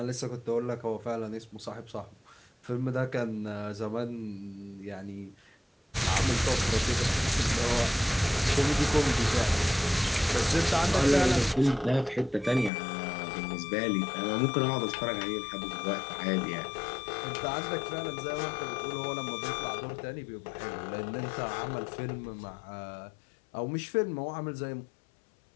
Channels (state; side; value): drops out; right; at 12.7 s